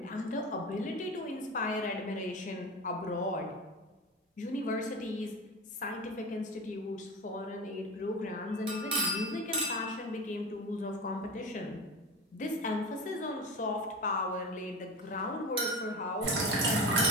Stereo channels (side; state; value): both; normal; correlation 0.29